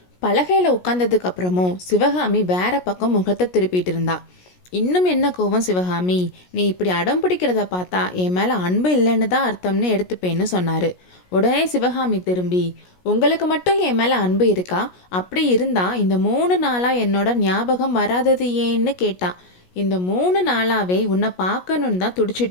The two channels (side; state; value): right; late; 17 ms